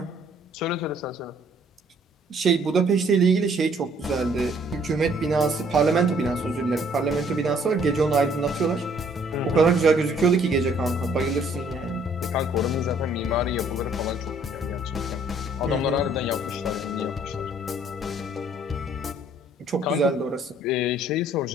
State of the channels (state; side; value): normal; both; correlation 0.62